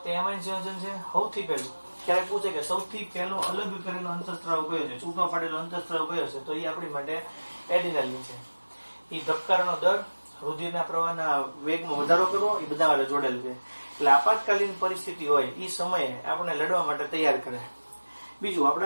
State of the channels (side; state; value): both; inverted; correlation -1.00